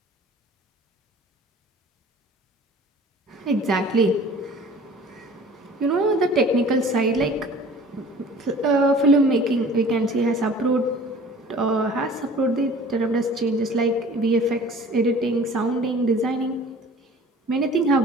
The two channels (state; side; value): normal; both; correlation 0.46